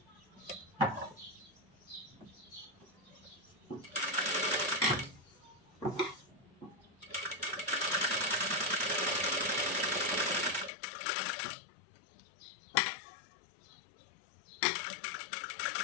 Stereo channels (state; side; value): drops out; right; at 10.7 s